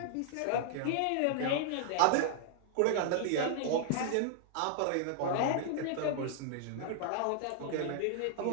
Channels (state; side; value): different; both; correlation -0.01